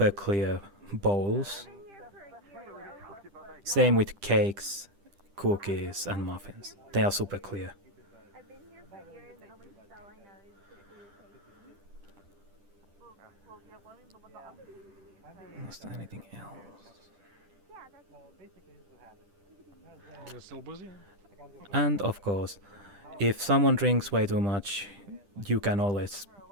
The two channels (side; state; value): left; late; 10 ms